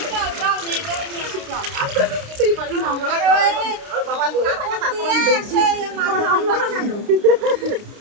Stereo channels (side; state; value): left; late; 29 ms